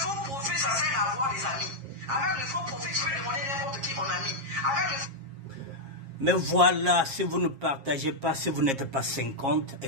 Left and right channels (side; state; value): left; late; 7.4 ms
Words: profil, ça sert à avoir des amis. Avec le faux profil, tu peux demander n'importe qui en ami. Avec le... Mais voilà, si vous ne partagez pas, si vous n'êtes pas 50,